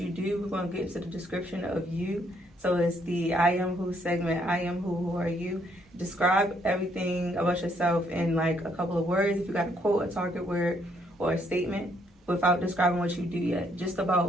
do, we're going to get into the description of you. So it's the I Am Who segment. I am who are you? Describe everything about yourself in like a couple of words. If you got a quote, a target word, or a statement without describing what you do yet. Just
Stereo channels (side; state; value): both; normal; correlation 0.70